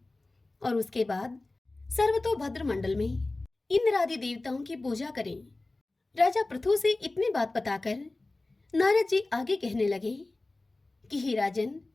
और उसके बाद सर्वतोभद्र मंडल में इंद्र आदि देवताओं की पूजा करें। राजा पृथु से इतनी बात बताकर नारद जी आगे कहने लगे कि हे राजन,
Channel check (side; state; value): right; quieter; 3.1 dB